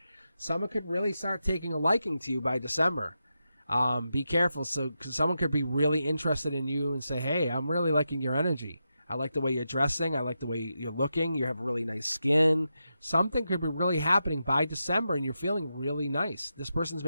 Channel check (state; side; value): inverted; both; correlation -0.88